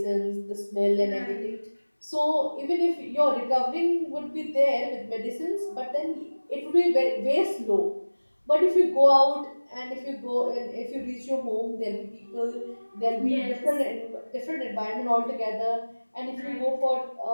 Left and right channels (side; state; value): both; inverted; correlation -1.00